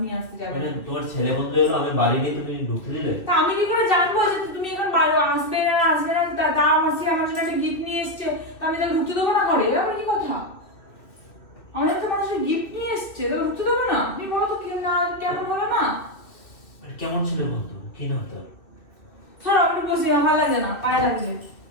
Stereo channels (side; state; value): right; late; 2.5 ms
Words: নিয়ে আসতে যাবে মানে না। তোমার ছেলে বন্ধু এলো, আমি বাড়ি নেই, তুমি ঢুকতে দিলে? তা আমি কি করে জানবো যে তুমি এখন আসবে না আসবে না? তা আমার জন্য একটা গিফট নিয়ে এসছে, তা আমি তাকে ঢুকতে দেবো না ঘরে? এবার কি কথা? আমাদের তো মানুষের গিফট নিয়ে এসছে, তাকে ঢুকতে দেবো না? তুমি বলো তো কেমন হলো না? মানে কেমন ছিল বন্ধু, কি নাম তোর? ধরো আমি বসি, আমার ভালো লাগে না, পায়ে লাগছে।